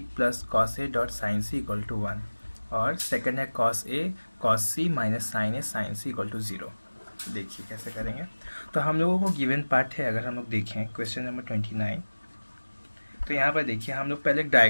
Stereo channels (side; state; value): both; inverted; correlation -1.00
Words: plus cos A dot sine C equal to 1, और सेकंड है cos A cos C minus sine A sine C equal to 0। देखिए कैसे करेंगे। तो हम लोगों को गिवन पार्ट है, अगर हम लोग देखें क्वेश्चन नंबर 29, तो यहाँ पर देखिए हम लोग पहले एक